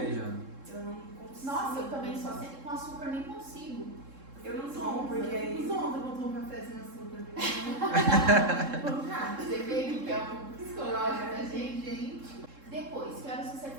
já. Eu não consigo. Nossa, eu também só sem, com açúcar nem consigo. Eu não tomo, porque aí. Os ontem eu tomo café sem açúcar. Você vê que é um psicológico da gente. Gente. Depois, que horas você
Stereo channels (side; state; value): left; late; 3.7 ms